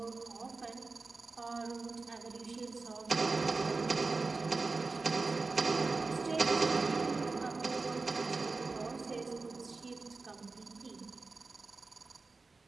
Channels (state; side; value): quieter; left; 3.9 dB